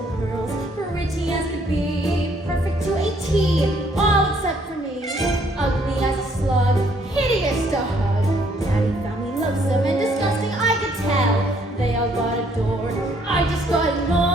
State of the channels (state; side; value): normal; both; correlation 0.65